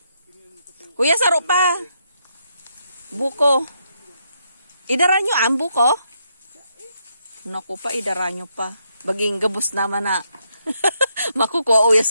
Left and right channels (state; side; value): inverted; both; correlation -0.78